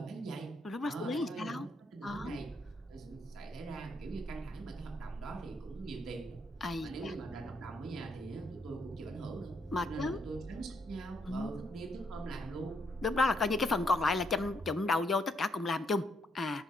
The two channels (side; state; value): both; normal; correlation 0.75